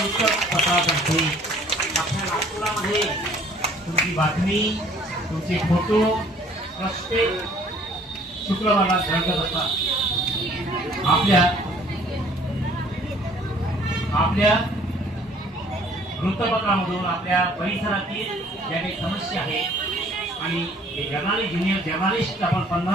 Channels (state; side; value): normal; both; correlation 0.56